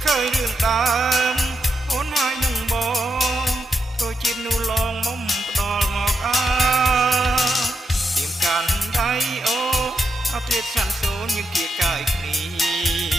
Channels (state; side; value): normal; both; correlation 0.85